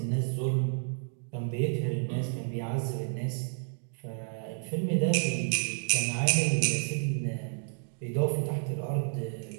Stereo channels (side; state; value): left; silent; digital silence